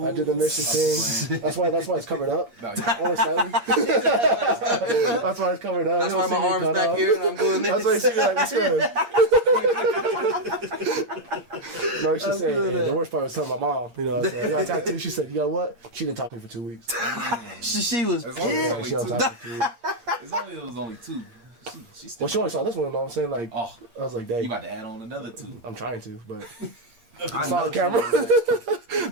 mission thing. That's why it's covered up. Only slightly. That's why it's covered up. That's why my arm's back here and I'm doing this. That's why you see me like this. No, she said, the worst part was telling my mom, you know, so I got tattooed. She said, you know what? She didn't talk to me for 2 weeks. she was pissed. She don't talk to me. It was only 2. She only saw this one, though. I'm saying, like, I was like, dang. You about to add on another 2. I'm trying to, but it's not on camera.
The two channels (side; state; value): left; late; 8.6 ms